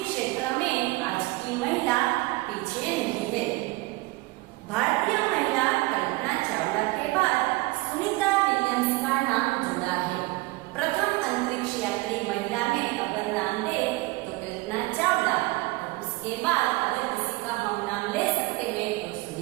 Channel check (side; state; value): left; quieter; 22.1 dB